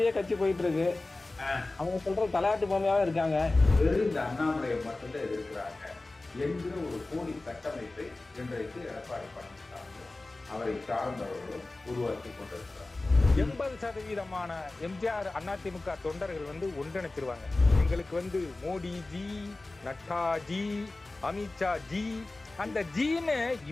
கட்சி போயிட்டு இருக்கு. அவங்க சொல்ற தலையாட்டு பொம்மையாவே இருக்காங்க. வெறும் இந்த அண்ணாமலையை மட்டும்தான் எதிர்க்கிறாங்க என்கிற ஒரு போலி கட்டமைப்பை இன்றைக்கு எடப்பாடி பழனிசாமி அவரை சார்ந்தவர்களும் உருவாக்கி கொண்டிருக்கிறார். 80% எம்ஜிஆர் அதிமுக தொண்டர்கள் ஒன்றிணைச்சிருவாங்க. எங்களுக்கு Modi G, Nadda G, Amit Shah G, அந்த ஜீன்னு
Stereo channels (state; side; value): quieter; right; 3.1 dB